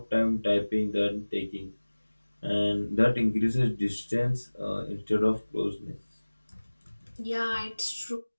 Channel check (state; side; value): inverted; both; correlation -1.00